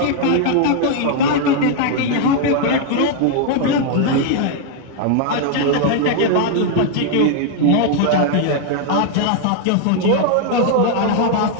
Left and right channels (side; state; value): both; different; correlation 0.00